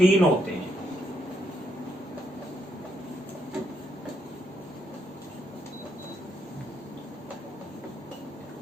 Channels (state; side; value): normal; both; correlation 0.76